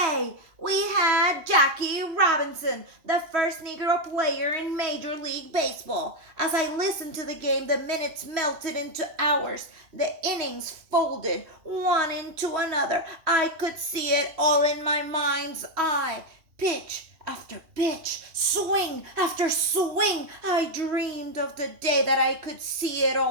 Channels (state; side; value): late; left; 3.1 ms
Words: We had Jackie Robinson, the first Negro player in Major League Baseball. As I listened to the game, the minutes melted into hours. The innings folded one into another. I could see it all in my mind's eye. Pitch after pitch, swing after swing. I dreamed of the day that I could see it